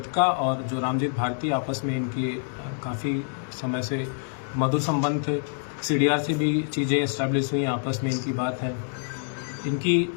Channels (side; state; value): right; silent; digital silence